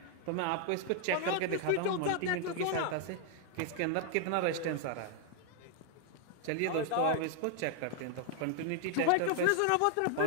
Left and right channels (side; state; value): both; different; correlation 0.00